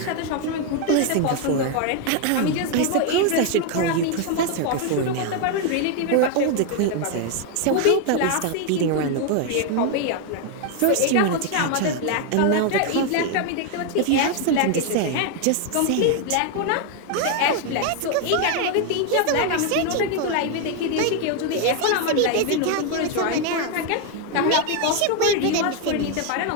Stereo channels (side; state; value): both; different; correlation 0.01